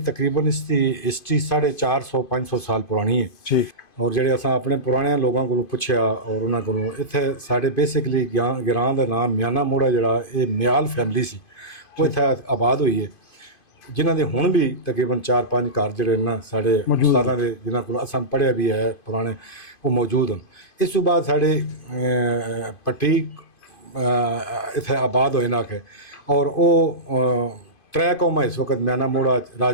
ਤਕਰੀਬਨ ਇਸ ਦੀ ਹਿਸਟਰੀ 450-500 ਸਾਲ ਪੁਰਾਣੀ ਹੈ ਠੀਕ ਔਰ ਜਿਹੜੇ ਅਸਾਂ ਆਪਣੇ ਪੁਰਾਣੇ ਲੋਕਾਂ ਕੋਲੋਂ ਪੁੱਛਿਆ ਔਰ ਉਹਨਾਂ ਕੋਲੋਂ ਇੱਥੇ ਸਾਡੇ ਬੇਸਿਕਲੀ ਗਿਰਾਂ ਦਾ ਨਾਮ ਮਿਆਨਾ ਮੋੜਾ ਜਿਹੜਾ ਇਹ ਮਿਆਲ ਫੈਮਿਲੀ ਸੀ ਉਹ ਇੱਥੇ ਆਬਾਦ ਹੋਈ ਹੈ ਜਿਨ੍ਹਾਂ ਦੇ ਹੁਣ ਵੀ ਤਕਰੀਬਨ 4-5 ਘਰ ਜਿਹੜੇ ਨਾ ਸਾਡੇ ਉਸਤਾਦਾਂ ਦੇ ਜਿਨ੍ਹਾਂ ਕੋਲ ਅਸਾਂ ਪੜ੍ਹਿਆ ਵੀ ਹੈ ਪੁਰਾਣੇ ਉਹ ਮੌਜੂਦ ਹਨ। ਇਸ ਤੋਂ ਬਾਅਦ ਸਾਡੇ ਪੱਟੀ ਇੱਥੇ ਆਬਾਦ ਹੋਏ ਨਾ ਕਿ ਔਰ ਉਹ त्रै कौमां इस वक्त म्याना मोड़ा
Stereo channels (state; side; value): late; right; 2.5 ms